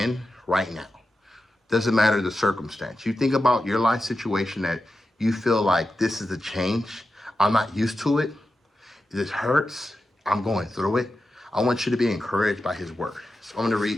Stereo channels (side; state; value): both; normal; correlation 0.91